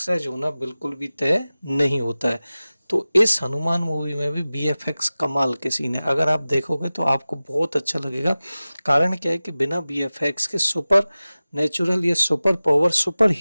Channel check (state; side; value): inverted; both; correlation -0.97